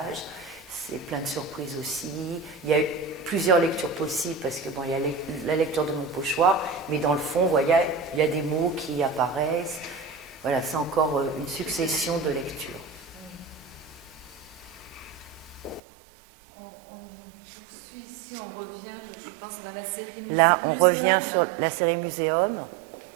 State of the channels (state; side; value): drops out; left; at 15.8 s